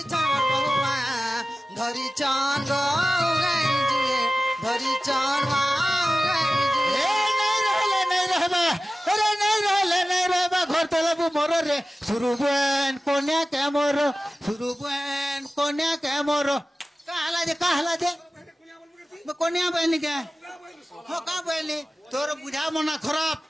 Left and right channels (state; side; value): normal; both; correlation 0.96